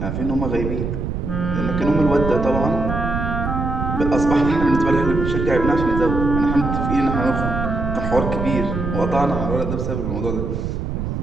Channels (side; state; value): right; noise; rumble, 3 dB below the sound